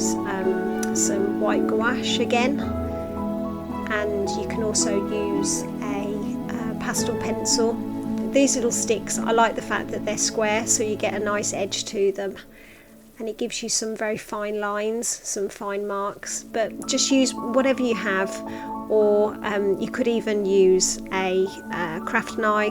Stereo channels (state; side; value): identical; both; correlation 1.00